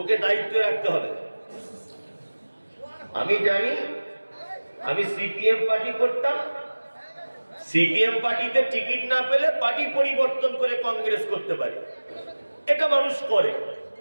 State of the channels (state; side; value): inverted; both; correlation -1.00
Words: দায়িত্ব রাখতে হবে। আমি জানি, আমি সিপিএম পার্টি করতাম, সিপিএম পার্টিতে টিকিট না পেলে পার্টি পরিবর্তন করে কংগ্রেস করতে পারি, এটা মানুষ করে।